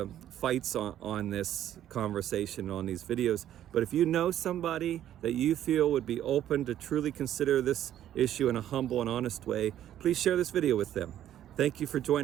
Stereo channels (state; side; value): quieter; left; 11.5 dB